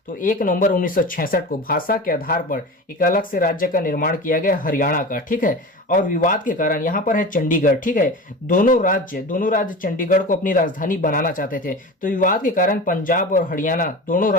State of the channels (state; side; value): normal; both; correlation 0.31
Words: तो 1 नवंबर 1966 को भाषा के आधार पर एक अलग से राज्य का निर्माण किया गया हरियाणा का। ठीक है, और विवाद के कारण यहाँ पर है चंडीगढ़। ठीक है, दोनों राज्य चंडीगढ़ को अपनी राजधानी बनाना चाहते थे। तो विवाद के कारण पंजाब और हरियाणा दोनों